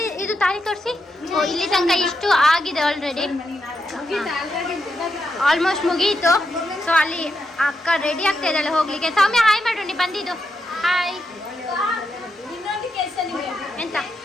ಇದು ತಾಳಿ ತೋರಿಸಿ. ಇಲ್ಲಿ ತನಕ ಇಷ್ಟು ಆಗಿದೆ ಆಲ್ರೆಡಿ, ಆಲ್ಮೋಸ್ಟ್ ಮುಗೀತು. ಸೊ ಅಲ್ಲಿ ಅಕ್ಕ ರೆಡಿ ಆಗ್ತಾ ಇದ್ದಾಳೆ ಹೋಗ್ಲಿಕ್ಕೆ. ಸೌಮ್ಯ ಹಾಯ್ ಮಾಡು, ನೀ ಬಂದಿದ್ದು. ಹಾಯ್. ಎಂತ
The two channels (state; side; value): normal; both; correlation 0.84